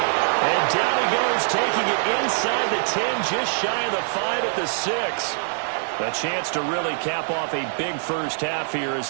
And down he goes, taking it inside the 10, just shy of the 5 at the 6. A chance to really cap off a big first half here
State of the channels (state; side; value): silent; left; digital silence